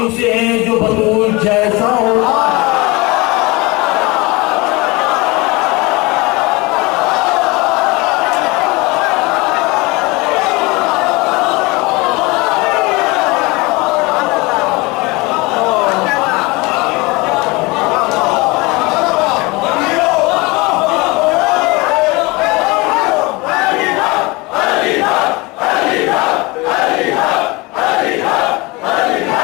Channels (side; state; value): right; quieter; 24.5 dB